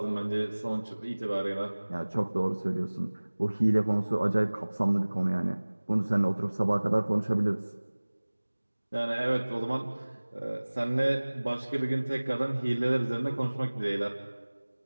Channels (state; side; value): inverted; both; correlation -1.00